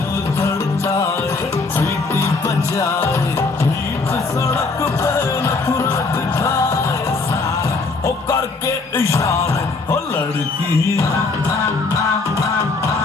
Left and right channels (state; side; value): quieter; right; 3.9 dB